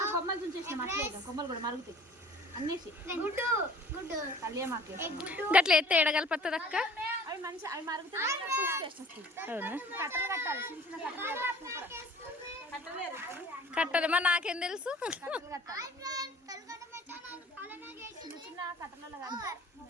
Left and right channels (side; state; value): both; normal; correlation 0.48